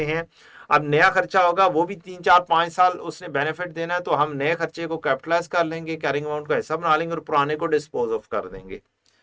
हैं। अब नया खर्चा होगा, वो भी 3 4 5 साल उसने बेनिफिट देना है, तो हम नए खर्चे को कैपिटलाइज कर लेंगे, कैरिंग अमाउंट का हिस्सा बना लेंगे और पुराने को डिस्पोज ऑफ कर देंगे।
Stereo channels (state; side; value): identical; both; correlation 1.00